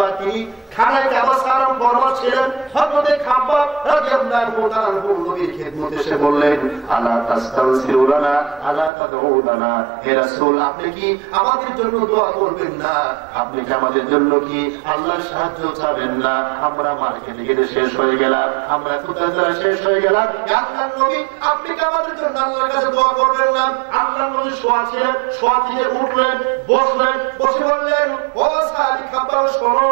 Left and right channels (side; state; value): left; drops out; at 8.9 s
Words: তিনি খানায় কাবা সালাম ফরমাস ছিলেন, হযরত খাব্বাব রাদিয়াল্লাহু তাআলা নবীর খেদমতে এসে বললেন, আলা তাস্তাগফিরুনা আলা তাদউনা, হে রাসূল আপনি কি আমাদের জন্য দোয়া করবেন না? আপনি কি আমাদের জন্য কি আল্লাহর সাহায্য চাবেন না? আমরা মার্কেটে গিয়ে শেষ হয়ে গেলাম, আমরা কোথায় শেষ হয়ে গেলাম। আল্লাহর নবী আপনি কি আমাদের জন্য আল্লাহর কাছে দোয়া করবেন না? আল্লাহর নবী শোয়া ছিলেন, শোয়া থেকে উঠলেন, বসলেন, বসে বললেন, ও সাহাবী খাব্বাব শোনো,